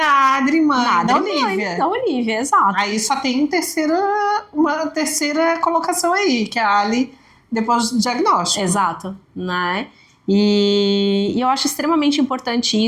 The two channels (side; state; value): both; identical; correlation 1.00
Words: Adri, mãe da Olivia. Da Olivia, exato. Aí só tem uma terceira colocação aí, que é a Ali depois do diagnóstico. Exato, né? E eu acho extremamente importante